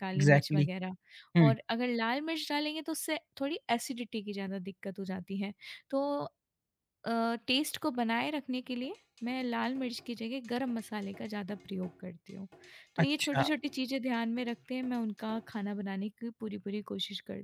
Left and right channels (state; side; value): identical; both; correlation 1.00